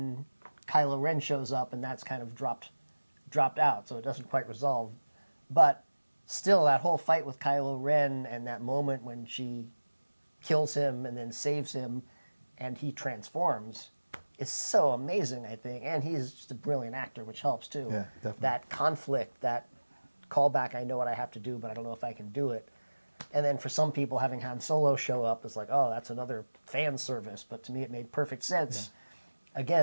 Kylo Ren shows up, and that's kind of dropped out, so it doesn't quite resolve. But still, that whole fight with Kylo Ren and that moment when she kills him and then saves him and he transforms is so amazing, I think. And he's just a brilliant actor, which helps, too. Yeah, definitely. That conflict, that callback, I know what I have to do, but I don't know if I can do it. And then for some people, having Han Solo show up is like, oh, that's another fan service. But to me, it made perfect sense,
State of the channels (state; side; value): inverted; both; correlation -1.00